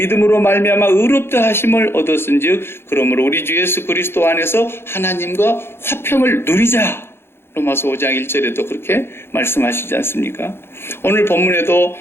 말미암아 의롭다 하심을 얻었은즉 그러므로 우리 주 예수 그리스도 안에서 하나님과 화평을 누리자. 로마서 5장 1절에도 그렇게 말씀하시지 않습니까? 오늘 본문에도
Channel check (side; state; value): right; late; 0.11 ms